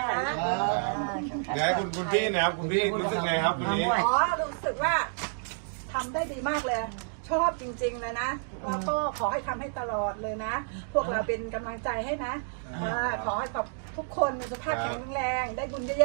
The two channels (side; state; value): left; silent; digital silence